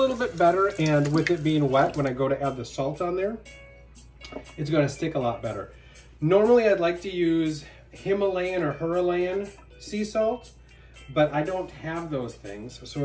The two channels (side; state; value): both; identical; correlation 1.00